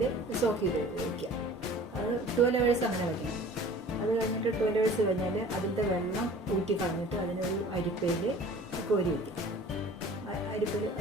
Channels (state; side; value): normal; both; correlation 0.45